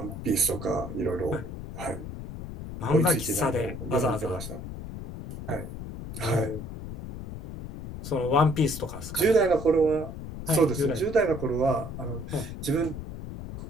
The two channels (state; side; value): noise; left; rumble, 9 dB below the sound